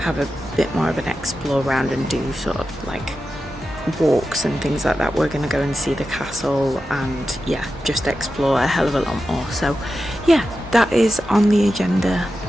have a bit more of an explore around and do sort of like walks and things like that. We're going to go and see the castle and yeah, just explore a hell of a lot more. So yeah, that is on the agenda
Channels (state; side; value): normal; both; correlation 0.91